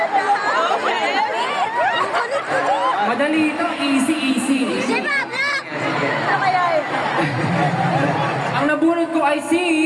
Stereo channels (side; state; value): both; identical; correlation 1.00